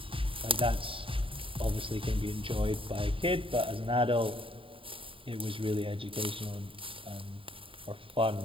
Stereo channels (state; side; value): late; left; 0.26 ms